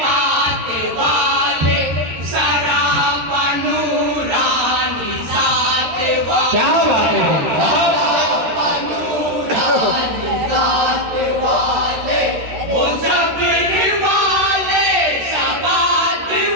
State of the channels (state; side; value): late; left; 13 ms